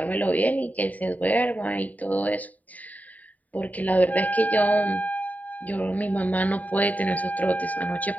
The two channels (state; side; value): late; right; 0.074 ms